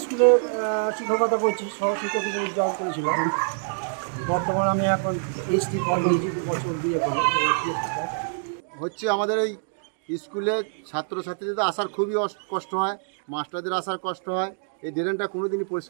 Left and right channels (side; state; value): left; silent; digital silence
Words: স্কুলে শিক্ষকতা করছি, সহশিক্ষক হিসেবে জব করেছিলাম। বর্তমানে আমি এখন এইচটি কলেজে 2 বছর দিয়ে করি। হচ্ছে আমাদের এই স্কুলে ছাত্রছাত্রীদের আসার খুবই কষ্ট হয়, মাস্টারদের আসার কষ্ট হয়। এই ড্রেনটা কোনোদিনই